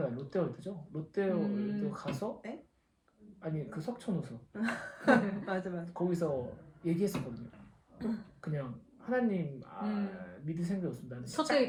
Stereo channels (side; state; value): both; identical; correlation 1.00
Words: 롯데월드죠. 롯데월드 가서 아니 그 석촌호수 맞아. 거기서 얘기했었거든요. 그냥 하나님 믿을 생각이 없습니다. 나는 첫